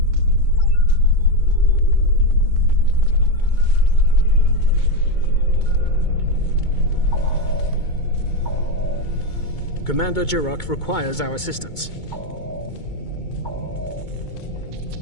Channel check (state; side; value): late; right; 2.2 ms